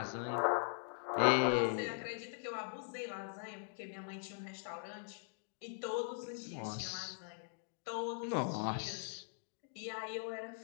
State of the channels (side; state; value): right; silent; digital silence